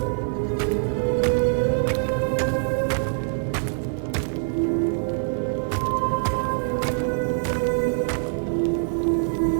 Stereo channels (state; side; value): silent; left; digital silence